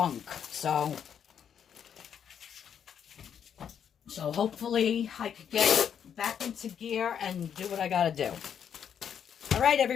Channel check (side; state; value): right; quieter; 8.3 dB